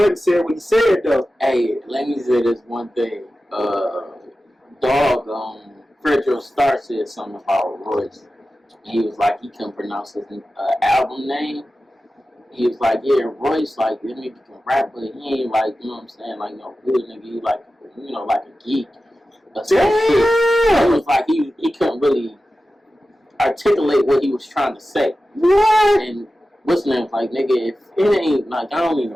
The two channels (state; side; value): normal; both; correlation 0.94